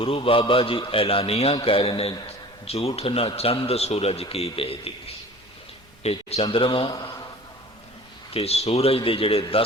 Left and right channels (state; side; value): normal; both; correlation 0.43